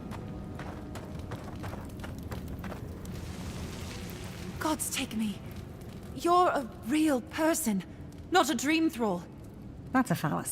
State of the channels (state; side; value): identical; both; correlation 1.00